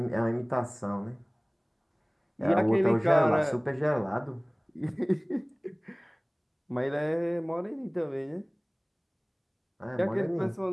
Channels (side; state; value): both; identical; correlation 1.00